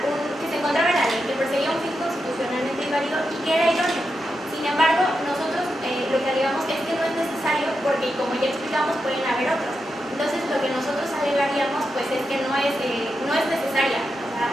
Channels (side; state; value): both; normal; correlation 0.87